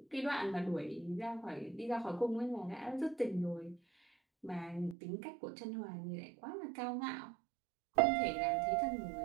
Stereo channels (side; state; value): left; drops out; at 5.0 s